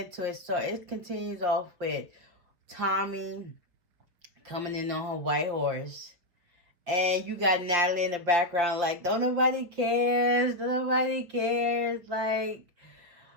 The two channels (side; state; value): left; late; 5.4 ms